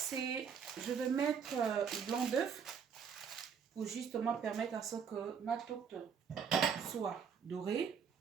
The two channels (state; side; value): quieter; left; 6.9 dB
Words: je vais mettre le blanc d'œuf pour justement permettre à ce que ma tourte soit dorée.